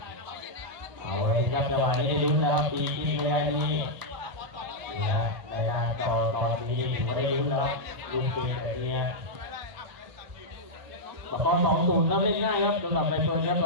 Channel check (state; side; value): late; left; 1.0 ms